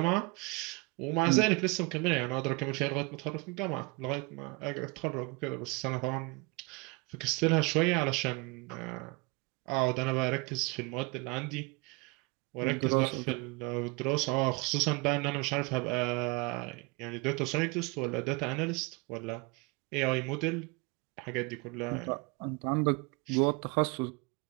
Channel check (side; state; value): left; quieter; 27.2 dB